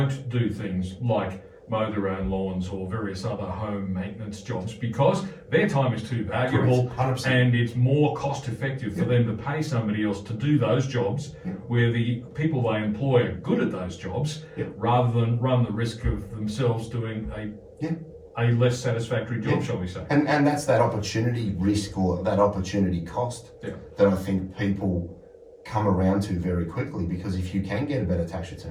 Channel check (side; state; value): both; identical; correlation 1.00